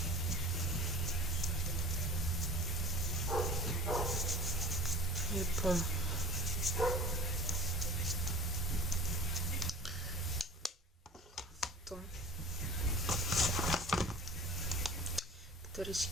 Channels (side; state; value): both; normal; correlation 0.40